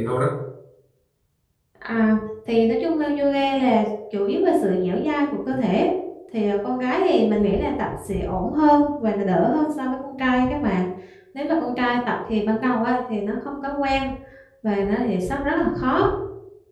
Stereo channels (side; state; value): both; identical; correlation 1.00